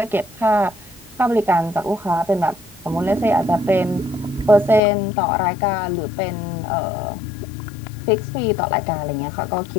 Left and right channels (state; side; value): drops out; right; at 4.8 s